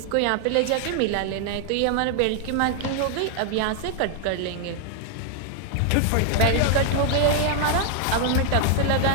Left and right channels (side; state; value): both; different; correlation 0.00